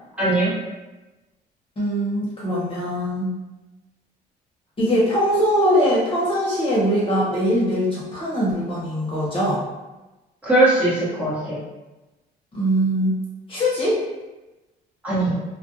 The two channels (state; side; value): normal; both; correlation 0.45